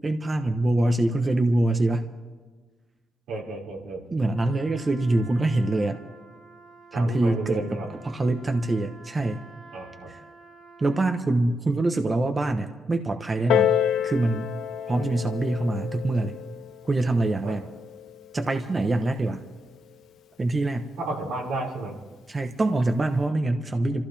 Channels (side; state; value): both; normal; correlation 0.86